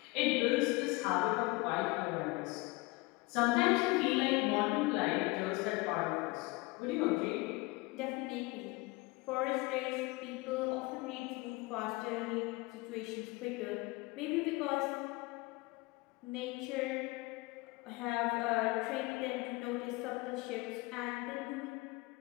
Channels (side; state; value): right; quieter; 24.0 dB